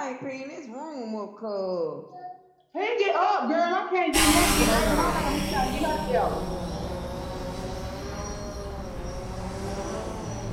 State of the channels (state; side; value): identical; both; correlation 1.00